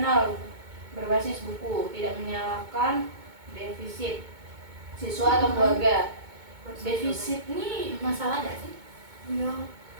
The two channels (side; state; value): left; late; 2.2 ms